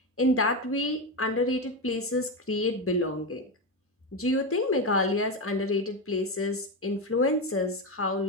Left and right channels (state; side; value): normal; both; correlation 0.13